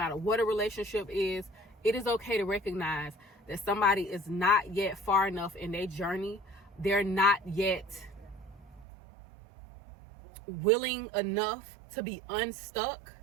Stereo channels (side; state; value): left; drops out; at 8.8 s